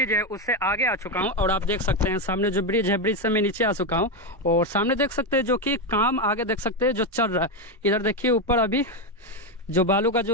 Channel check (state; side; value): normal; both; correlation 0.09